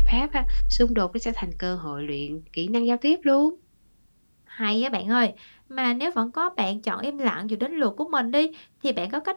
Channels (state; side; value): inverted; both; correlation -1.00